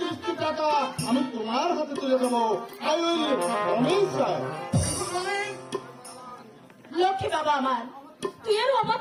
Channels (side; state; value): both; identical; correlation 1.00